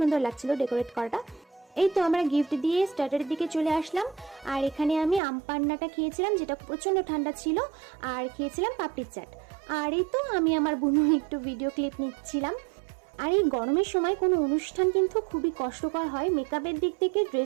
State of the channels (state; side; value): drops out; left; at 5.2 s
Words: লাগছিল ডেকোরেট করাটা। এই তো আমরা গিফট দিয়ে স্টার্টারের দিকে চলে আসলাম। আর এখানে আমি আম পান্নাটা খেয়েছিলাম, যেটা প্রচণ্ড ঠান্ডা ছিল, আর খেয়েছিলাম পাপড়ির চাট। আর এই তো আমি আমার বোন একটু ভিডিও ক্লিপ নিচ্ছিলাম। আর এই গরমের সময় কোনো অনুষ্ঠান কিন্তু খুবই কষ্টকর হয়, মেকআপের দিক থেকে,